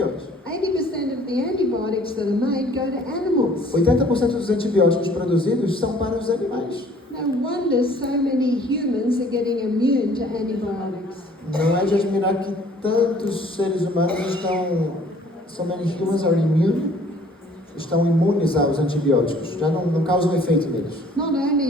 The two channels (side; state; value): both; normal; correlation 0.56